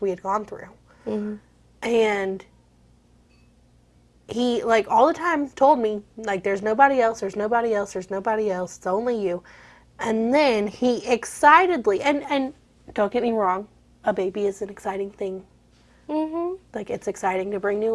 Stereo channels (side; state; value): both; identical; correlation 1.00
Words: we had gone through. And he, like, all the time told me, like, there's nobody else, there's nobody else, there's nobody else, it's only you. And then he excitedly, and don't get me wrong, a baby is an exciting thing. Like, it's exciting to bring new